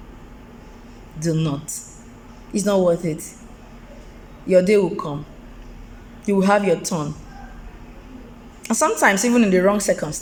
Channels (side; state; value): both; identical; correlation 1.00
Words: Do not. It's not worth it. Your day will come. You will have your turn. And sometimes even in the wrong